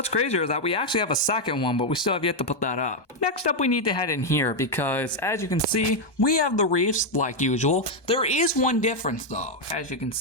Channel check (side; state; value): right; late; 1.2 ms